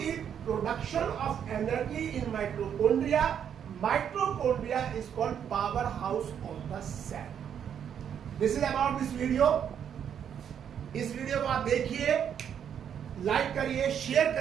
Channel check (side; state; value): left; quieter; 8.6 dB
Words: production of energy in mitochondria, mitochondria is called power house of the cell. This is about this video. इस video को आप देखिए, लाइक करिए, शेयर